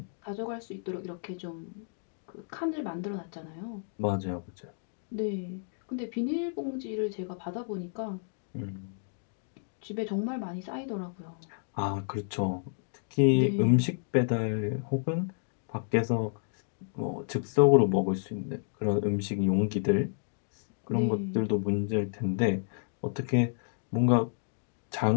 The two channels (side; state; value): right; silent; digital silence